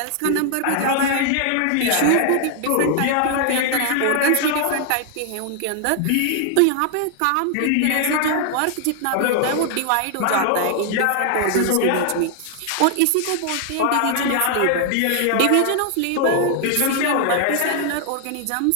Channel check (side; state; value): both; different; correlation 0.00